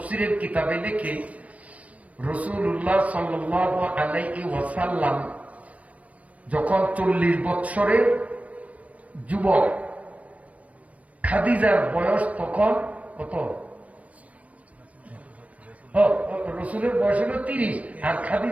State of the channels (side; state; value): left; late; 0.067 ms